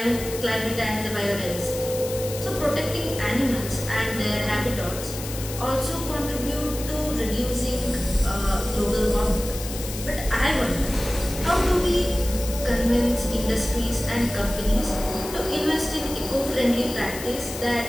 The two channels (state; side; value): noise; left; hiss, 10 dB below the sound